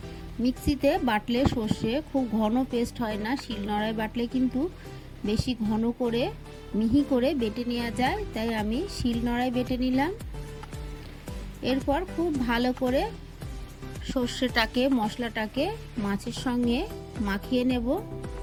মিক্সিতে বাটলে সর্ষে খুব ঘন পেস্ট হয় না, শিলনোড়ায় বাটলে কিন্তু বেশি ঘন করে মিহি করে বেটে নেওয়া যায়, তাই আমি শিলনোড়ায় বেটে নিলাম। এরপর খুব ভালো করে সর্ষেটাকে মশলাটাকে মাছের সঙ্গে মাখিয়ে নেব।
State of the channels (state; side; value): identical; both; correlation 1.00